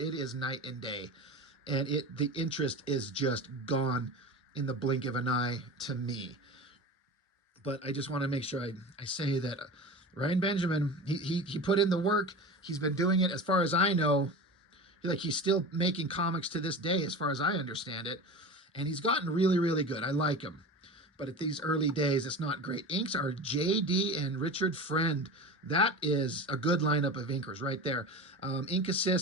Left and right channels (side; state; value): both; normal; correlation 0.31